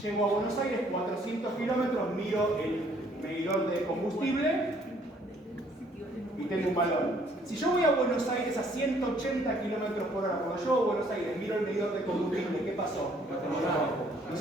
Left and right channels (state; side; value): normal; both; correlation 0.63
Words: llego a Buenos Aires 400 kilómetros, miro el medidor de combustible y tengo un valor. Si yo voy a Buenos Aires a 180 kilómetros por hora, cuando llego a Buenos Aires miro el medidor de combustible, ¿qué pasó? No